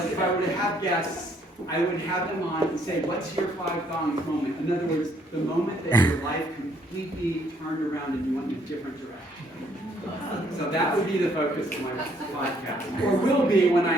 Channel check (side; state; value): both; normal; correlation 0.67